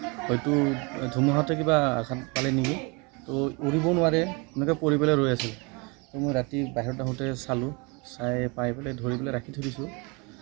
হয়তো ধুমুহাতে কিবা আঘাত পালে নেকি তো উৰিব নোৱাৰে এনেকৈ পৰি পেলাই ৰৈ আছিল তো মই ৰাতি বাহিৰত আহোঁতে চালোঁ চাই পাই পেলাই ধৰি পেলাই ৰাখি থৈ দিছোঁ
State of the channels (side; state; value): left; quieter; 29.9 dB